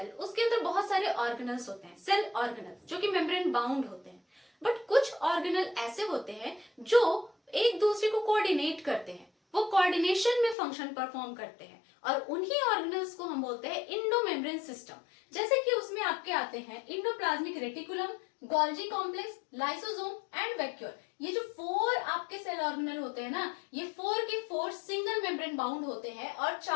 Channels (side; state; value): right; drops out; at 10.6 s